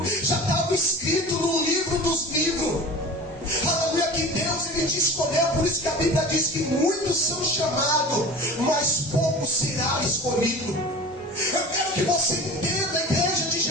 Já estava escrito no livro dos livros, aleluia, que Deus ele te escolheu. Por isso que a Bíblia diz que muitos são chamados, mas poucos será escolhido. Eu quero que você entenda, a igreja de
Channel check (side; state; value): both; normal; correlation 0.37